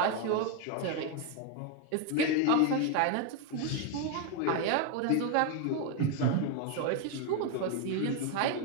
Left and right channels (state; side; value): different; both; correlation 0.01